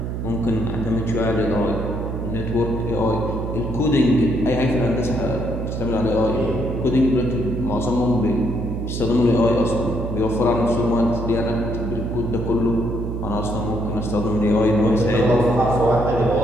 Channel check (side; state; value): right; noise; hum, 4 dB below the sound